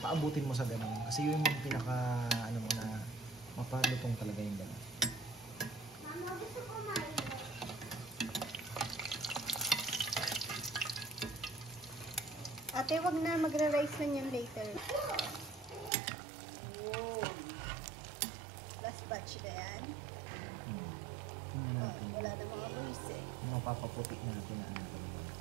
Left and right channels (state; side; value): drops out; left; at 15.9 s